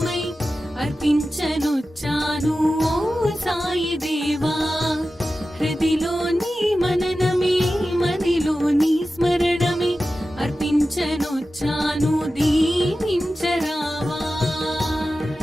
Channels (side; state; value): both; normal; correlation 0.94